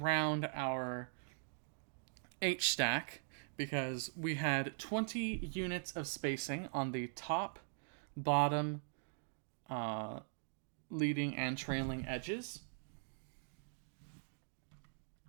our H stack, because we had 20 units of spacing on the top, bottom, leading, and trailing edges.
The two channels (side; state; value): left; silent; digital silence